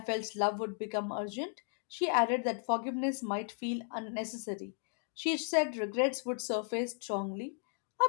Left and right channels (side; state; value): right; silent; 54 dB below the other